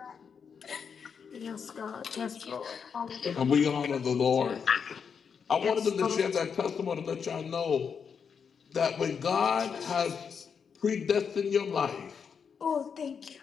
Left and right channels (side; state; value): right; quieter; 6.5 dB